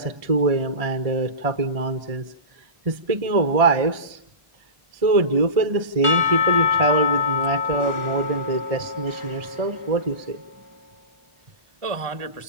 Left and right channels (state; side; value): late; left; 1.7 ms